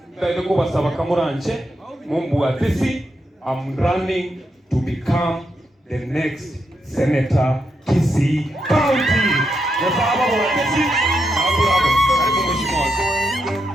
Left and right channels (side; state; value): both; normal; correlation 0.83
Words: taideko basaba kamuranche, mumbu atesi, I'm running to become the next Senator Kisii County. Yes, I'm